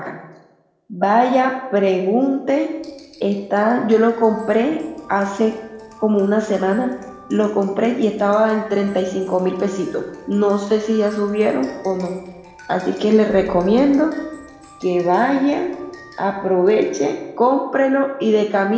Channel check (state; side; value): identical; both; correlation 1.00